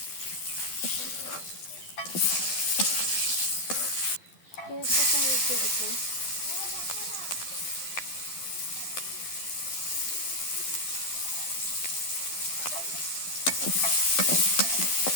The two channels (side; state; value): right; late; 12 ms